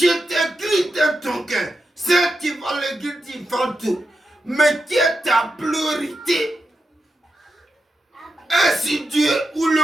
Christ dans ton cœur? C'est tu vas le dire, tu vas tout. Mais qui est ta priorité? Est-ce si Dieu ou le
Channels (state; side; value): normal; both; correlation 0.88